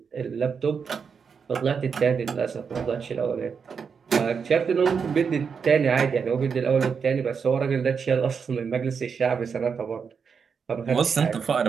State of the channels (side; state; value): left; quieter; 6.1 dB